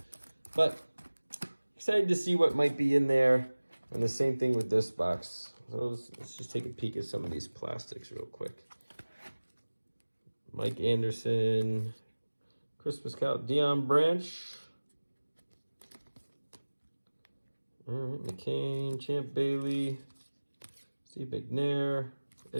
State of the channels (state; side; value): inverted; both; correlation -1.00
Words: But excited to see what might be in there. And the same thing with this box. So let's just take a peek at some of these plastics real quick. Mike Anderson, Christmas Cow, Deion Branch. All right, McCain, Champ Bailey, Steve McNair,